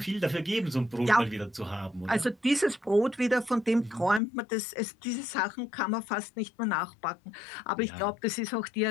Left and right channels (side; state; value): right; drops out; at 4.2 s